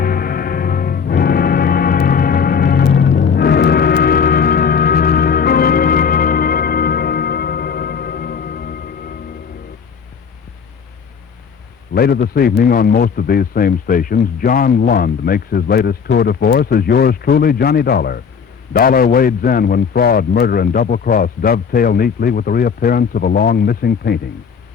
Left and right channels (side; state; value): right; quieter; 6.5 dB